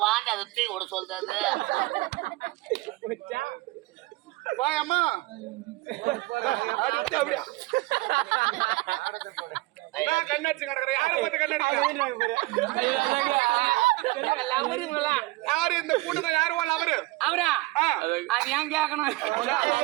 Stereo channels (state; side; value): quieter; left; 21.1 dB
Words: வாங்க அதை தூக்கி விட சொல்றது அம்மா கண்ணடிச்சு கிடக்குற யார பார்த்து கண்ணடிக்கிறீங்க யாரு இந்த கூட்டத்தை யாரு அவரு அவரா அது ஏன் கேட்கணும்